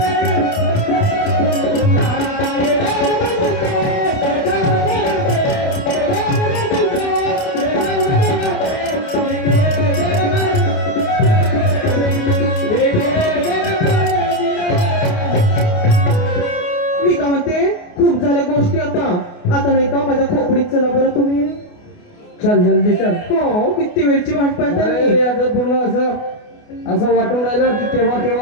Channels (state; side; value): late; right; 28 ms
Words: मी काय म्हणते खूप झाल्या गोष्टी आता नाही का माझ्या खोपडीत चला बरं तुम्ही चल जल्दी चल हो किती वेळची वाट पाहता अरे मी आता पूर्ण असं वाटून राहिलं की